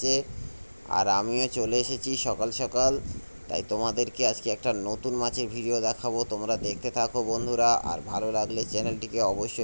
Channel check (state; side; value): inverted; both; correlation -1.00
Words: আর আমিও চলে এসেছি সকাল সকাল। তাই তোমাদেরকে আজকে একটা নতুন মাছের ভিডিও দেখাবো, তোমরা দেখতে থাকো বন্ধুরা। আর ভালো লাগলে চ্যানেলটিকে